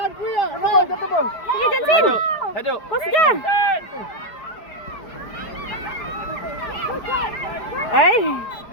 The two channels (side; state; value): right; late; 4.7 ms